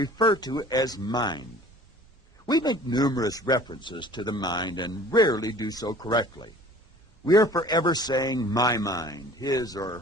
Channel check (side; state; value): both; normal; correlation 0.48